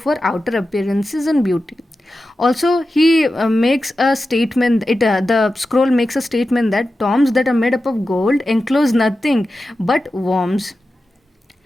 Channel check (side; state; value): both; normal; correlation 0.92